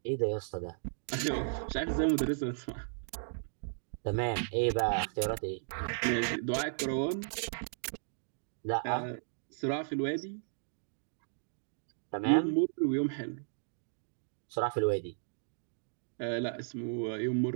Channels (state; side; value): silent; left; digital silence